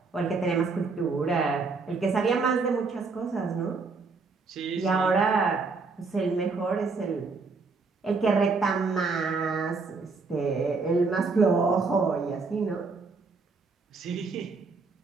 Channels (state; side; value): quieter; left; 4.3 dB